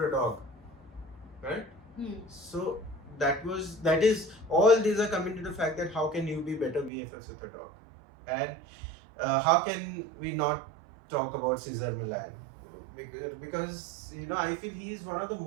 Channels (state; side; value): drops out; left; at 6.9 s